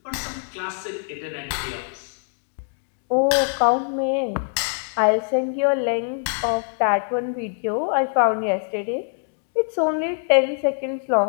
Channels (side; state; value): right; silent; 63 dB below the other